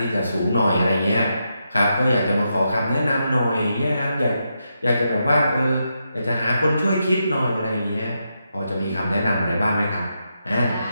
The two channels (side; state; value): both; inverted; correlation -0.84